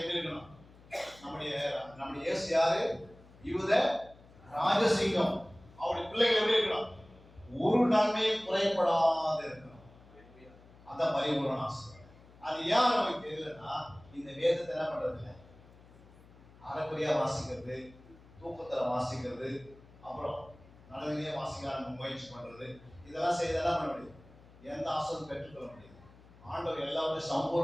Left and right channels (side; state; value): left; noise; hum, 23 dB below the sound